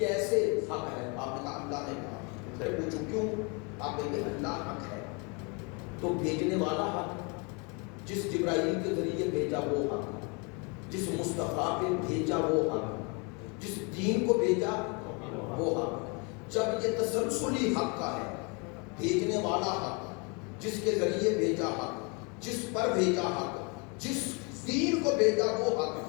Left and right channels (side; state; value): right; quieter; 32.1 dB